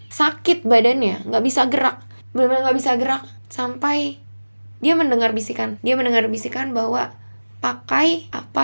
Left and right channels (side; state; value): both; inverted; correlation -1.00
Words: sakit badannya, nggak bisa gerak, benar-benar nggak bisa gerak, sampai dia mendengar bisikan bahwa pakai